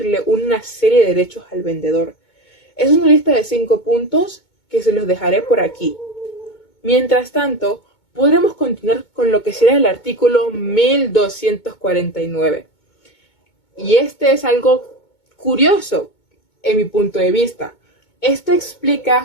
una serie de derechos al vendedor. Es una lista de 5 puntos que se los dejaré por aquí. Mientras tanto, podremos continuar con lo que será el artículo 1249. Y este es algo curioso en mi punto de vista. Esto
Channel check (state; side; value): late; right; 2.2 ms